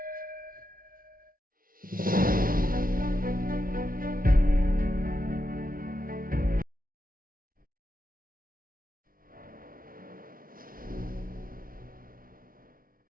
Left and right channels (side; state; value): left; late; 0.42 ms